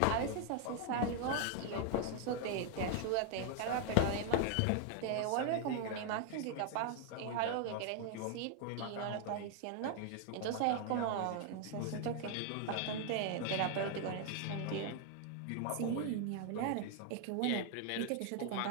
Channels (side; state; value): both; different; correlation 0.00